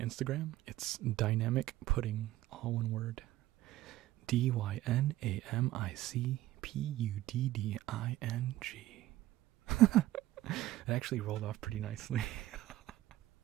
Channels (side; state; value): left; quieter; 15.2 dB